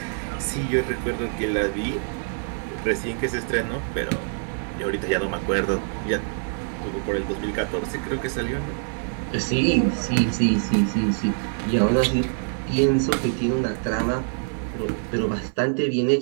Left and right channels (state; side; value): silent; left; 62 dB below the other